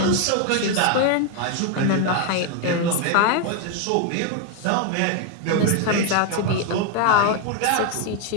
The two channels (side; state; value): both; different; correlation 0.01